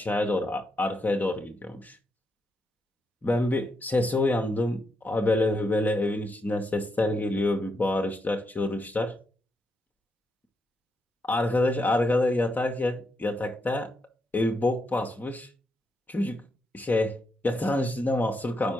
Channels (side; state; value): both; normal; correlation 0.81